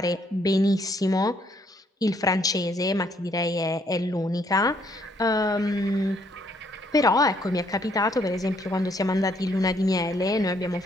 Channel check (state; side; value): normal; both; correlation 0.68